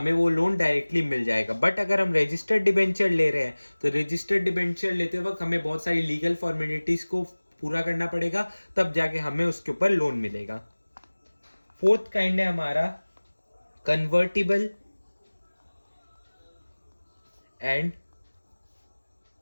वो लोन डायरेक्टली मिल जाएगा। बट अगर हम रजिस्टर्ड डिबेंचर ले रहे हैं तो रजिस्टर्ड डिबेंचर लेते वक्त हमें बहुत सारी लीगल फॉर्मेलिटीज को पूरा करना पड़ेगा, तब जाके हमें उसके ऊपर लोन मिलेगा। फोर्थ काइंड है हमारा convertible and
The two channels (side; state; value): both; inverted; correlation -1.00